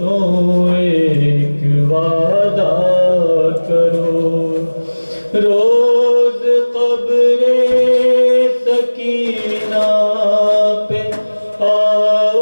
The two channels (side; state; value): both; inverted; correlation -1.00